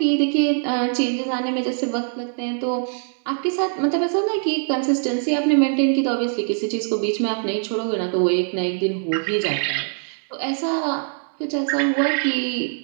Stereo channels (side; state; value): left; silent; 58 dB below the other